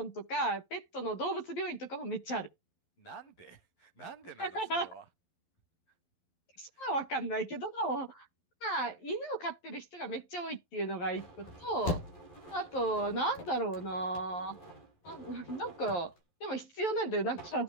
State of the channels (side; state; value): right; late; 11 ms